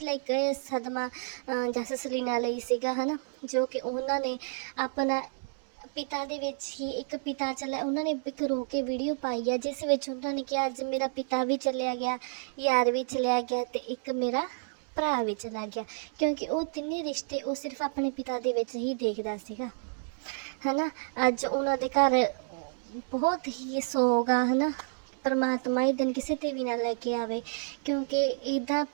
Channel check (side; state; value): left; silent; digital silence